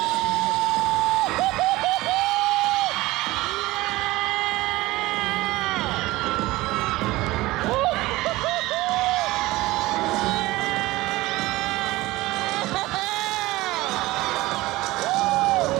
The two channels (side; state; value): left; quieter; 19.0 dB